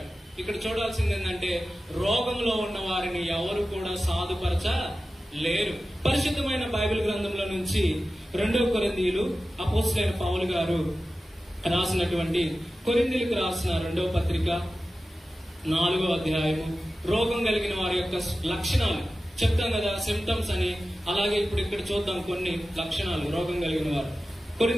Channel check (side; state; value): both; normal; correlation 0.94